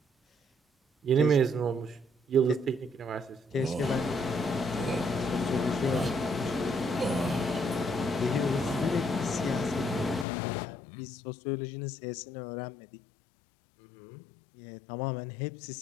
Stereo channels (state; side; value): drops out; right; at 10.2 s